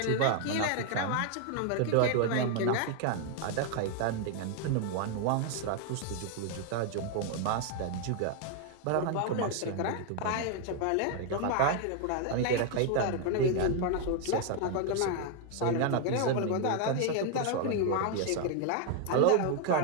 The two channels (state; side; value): different; both; correlation 0.00